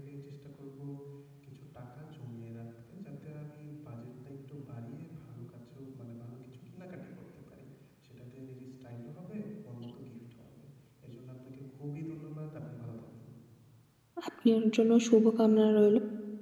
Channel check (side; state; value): both; identical; correlation 1.00